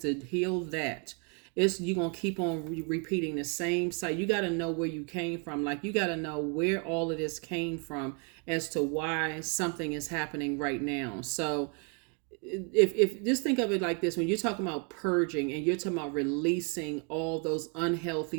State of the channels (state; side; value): quieter; left; 36.7 dB